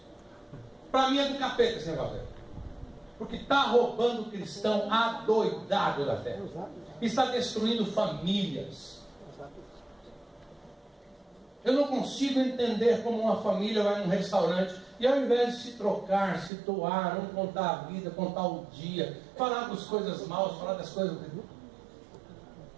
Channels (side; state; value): left; drops out; at 16.5 s